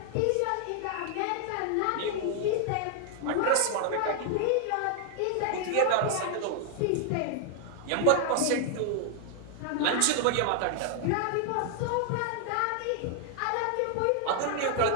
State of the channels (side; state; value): both; different; correlation 0.00